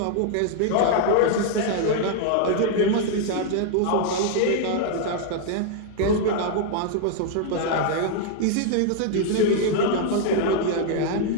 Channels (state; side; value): different; both; correlation 0.00